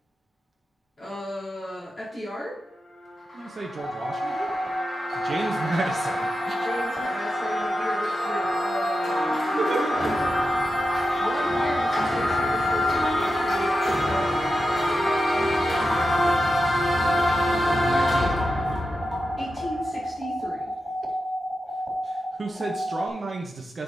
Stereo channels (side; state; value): both; normal; correlation 0.90